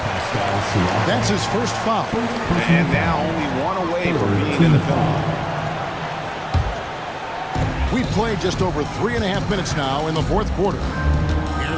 That's his first foul. And now only one away from being in the penalty. We've played just over 3.5 minutes now in the fourth quarter.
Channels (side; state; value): both; identical; correlation 1.00